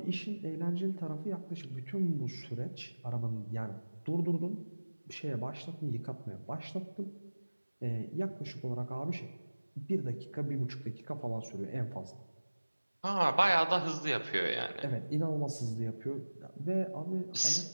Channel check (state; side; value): inverted; both; correlation -1.00